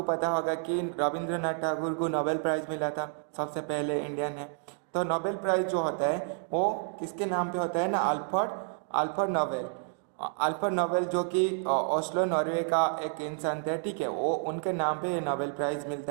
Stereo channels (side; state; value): left; silent; 58 dB below the other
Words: पता होगा कि रविंद्रनाथ टैगोर को नोबेल प्राइज़ मिला था, सबसे पहले इंडियन है। तो नोबेल प्राइज़ जो होता है वो किसके नाम पे होता है ना, अल्फ्रेड नोबेल जो कि ओस्लो नॉर्वे का एक इंसान थे। ठीक है, वो उनके नाम पे नोबेल प्राइज़